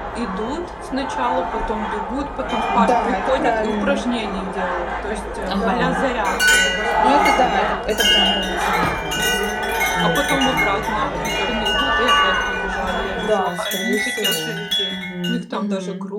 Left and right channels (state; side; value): identical; both; correlation 1.00